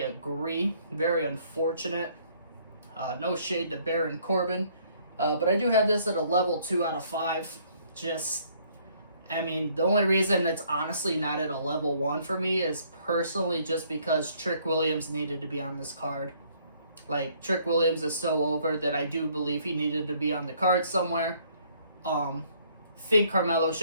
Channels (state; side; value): inverted; both; correlation -0.63